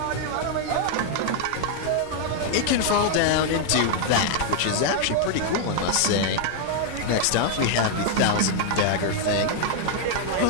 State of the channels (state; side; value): different; both; correlation 0.00